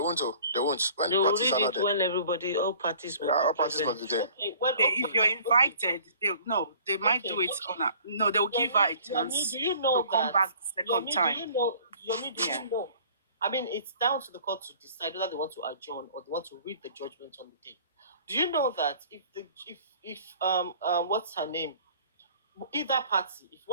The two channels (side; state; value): both; inverted; correlation -0.51